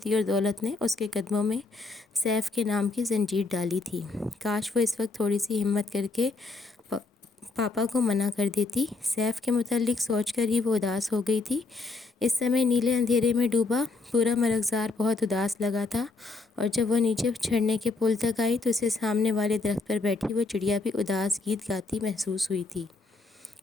اور دولت نے اس کے قدموں میں سیف کے نام کی زنجیر ڈالی تھی۔ کاش وہ اس وقت تھوڑی سی ہمت کر کے پاپا کو منع کر دیتی۔ سیف کے متعلق سوچ کر ہی وہ اداس ہو گئی تھی۔ اس سمے نیلے اندھیرے میں ڈوبا پورا مرغزار بہت اداس لگا تھا، اور جب وہ نیچے چڑھنے کے پل تک آئی تو اسے سامنے والے درخت پر بیٹھی وہ چڑیا بھی اداس گیت گاتی محسوس ہوئی تھی۔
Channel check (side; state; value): right; quieter; 3.6 dB